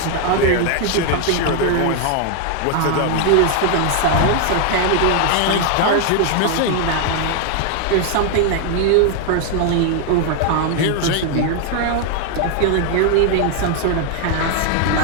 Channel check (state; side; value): different; both; correlation 0.00